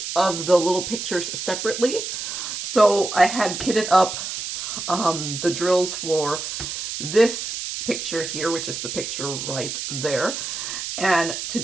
of the little pictures separately. So I had kitted up the drills for this picture here, which is the picture right there. And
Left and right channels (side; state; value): right; noise; hiss, 5 dB below the sound